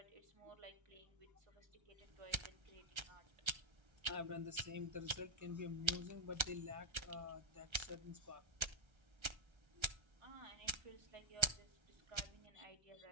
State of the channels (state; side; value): late; left; 1.3 ms